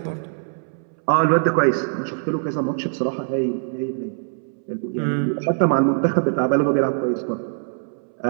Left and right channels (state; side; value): silent; left; 64 dB below the other